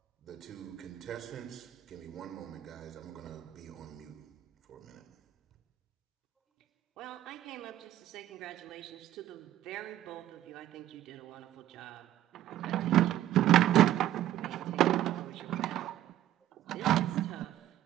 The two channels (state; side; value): quieter; left; 12.9 dB